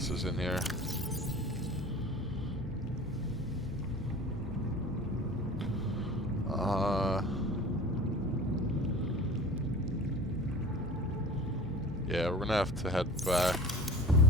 is in here? gonna have to head back.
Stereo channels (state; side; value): normal; both; correlation 0.40